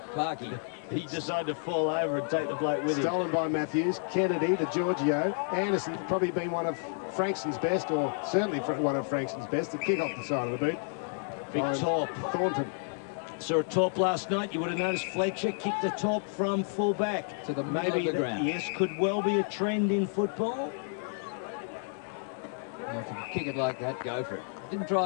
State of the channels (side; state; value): right; silent; 57 dB below the other